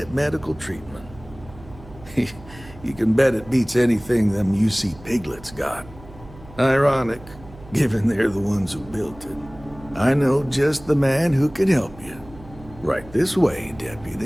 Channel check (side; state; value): right; noise; hum, 20 dB below the sound